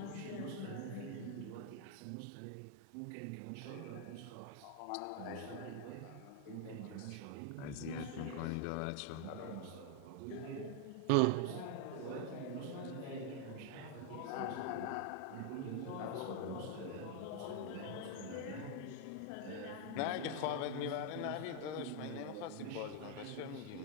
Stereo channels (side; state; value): both; different; correlation 0.00